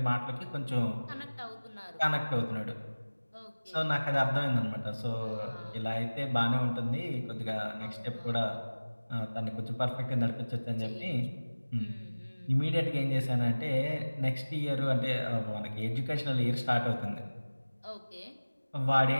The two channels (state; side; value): inverted; both; correlation -1.00